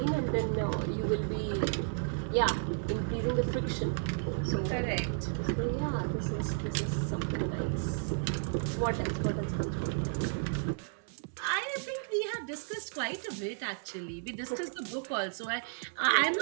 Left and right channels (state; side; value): silent; left; digital silence